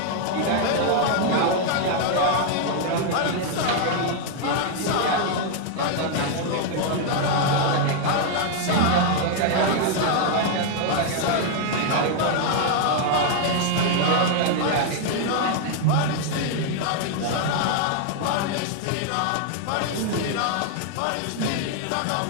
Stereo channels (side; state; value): both; different; correlation 0.00